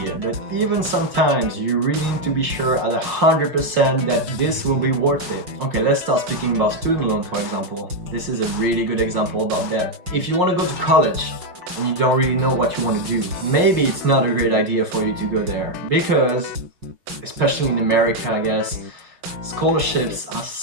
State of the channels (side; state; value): left; late; 5.6 ms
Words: But even sometimes you really need to be sure at 100% that this will be worth it. Okay, let's start speaking about student loan, for example. This is a really good example about debt. If you want to go to college and you don't really know what you want to do, maybe it's not a great idea for you to go there, because especially in America, I guess, scholarships are